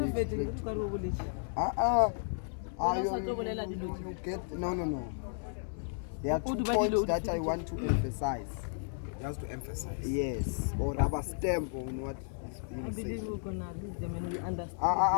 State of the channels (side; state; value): right; silent; 55 dB below the other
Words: you get no. There are 2 points that I want to emphasize. Just to emphasize. Yes, or rubber stamp on what is being said.